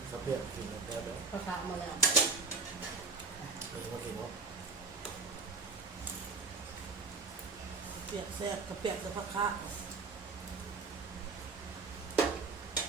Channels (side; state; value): left; quieter; 4.0 dB